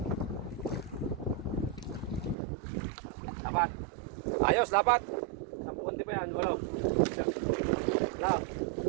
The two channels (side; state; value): left; drops out; at 2.4 s